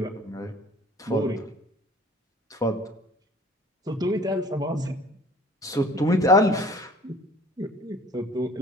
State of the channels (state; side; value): normal; both; correlation 0.50